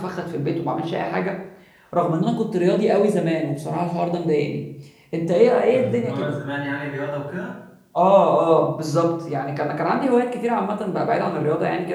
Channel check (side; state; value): both; identical; correlation 1.00